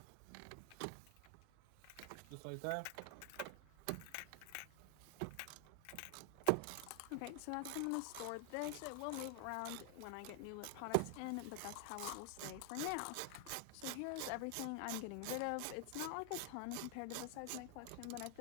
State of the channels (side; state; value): both; different; correlation 0.00